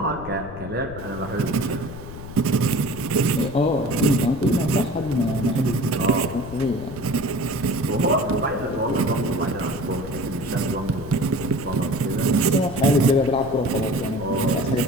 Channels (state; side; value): noise; left; rumble, 12 dB below the sound